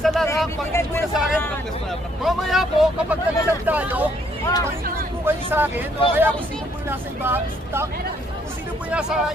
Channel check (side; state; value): both; normal; correlation 0.68